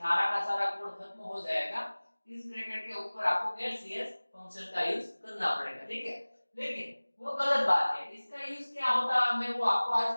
का सारा कोड खत्म हो जाएगा, इस ब्रैकेट के ऊपर आपको गेट सीएस फंक्शन का यूज करना पड़ेगा। ठीक है, लेकिन वो गलत बात है, इसका यूज क्या होता है मैं वो आपको आज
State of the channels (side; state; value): both; inverted; correlation -1.00